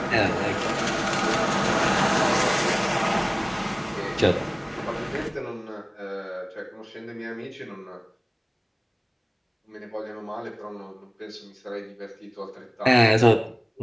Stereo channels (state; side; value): identical; both; correlation 1.00